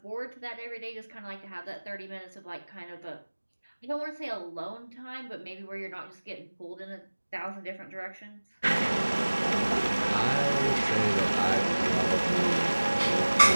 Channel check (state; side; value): inverted; both; correlation -1.00